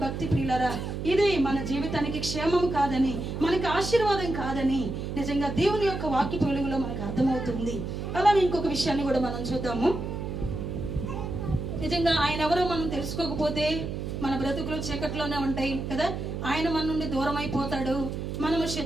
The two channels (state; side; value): noise; right; hum, 5 dB below the sound